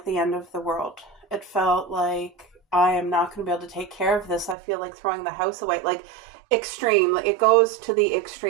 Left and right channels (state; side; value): drops out; left; at 4.5 s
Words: the end of the world. It felt like I am not going to be able to take care of this. I feel like throwing the house away. Like extreme. It goes to the